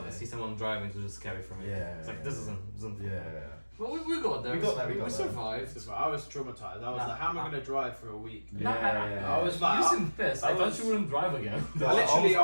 Yeah. see someone driving, it was just scary for me. Yeah, It's like yeah, this yeah. isn't. yeah. Well, we got there. We got there, we We got there. survived. I was traumatized. I was Nah, like, how am I nah. going to drive for a week? Nah, I was like, you seemed pissed. I thought you wouldn't drive again. Yeah, I was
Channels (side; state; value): both; inverted; correlation -1.00